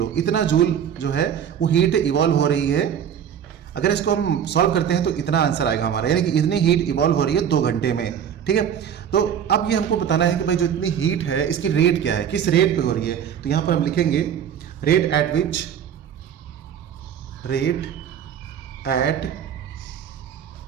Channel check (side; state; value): left; quieter; 8.7 dB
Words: इतना जूल जो है वो हीट इवॉल्व हो रही है। अगर इसको हम सॉल्व करते हैं तो इतना आंसर आएगा हमारा, यानी कि इतनी हीट इवॉल्व हो रही है 2 घंटे में। ठीक है, तो अब ये हमको बताना है कि भाई जो इतनी हीट है इसकी रेट क्या है, किस रेट पे हो रही है। तो यहाँ पर हम लिखेंगे rate at which